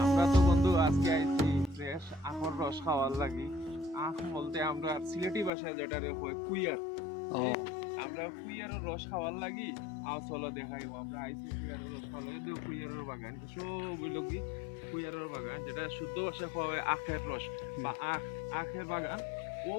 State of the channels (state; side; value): drops out; right; at 5.5 s